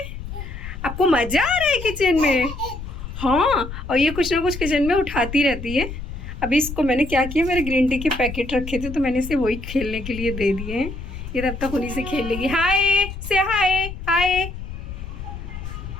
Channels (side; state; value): left; noise; rumble, 9 dB below the sound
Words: आपको मज़ा आ रहा है किचन में? हाँ, और ये कुछ ना कुछ किचन में उठाती रहती है। अभी इसको मैंने क्या किया, मेरे ग्रीन टी के पैकेट रखे थे तो मैंने इसे वही खेलने के लिए दे दिए हैं। ये तब तक उन्हीं से खेल लेगी। हाय से हाय हाय,